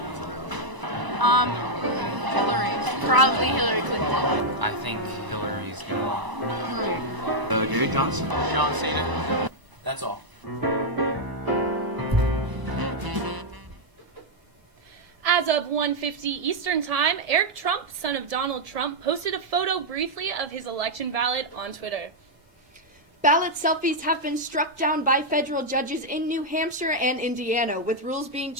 for now. Hillary. Probably Hillary Clinton. I think Hillary's gonna win. Gary Johnson. John Cena. That's all. As of 1:50 Eastern Time, Eric Trump, son of Donald Trump, posted a photo briefly of his election ballot on Twitter. Ballot selfies have been struck down by federal judges in New Hampshire and Indiana, with rules being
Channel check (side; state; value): left; late; 1.0 ms